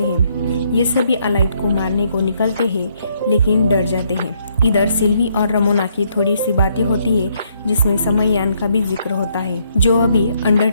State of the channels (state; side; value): inverted; both; correlation -0.71